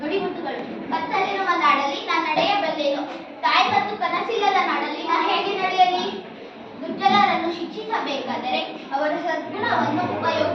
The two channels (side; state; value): both; identical; correlation 1.00